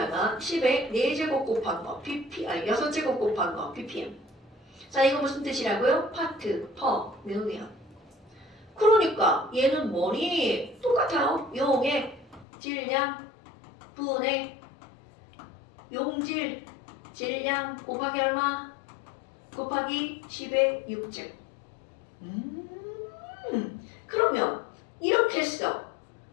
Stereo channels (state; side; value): drops out; right; at 12.5 s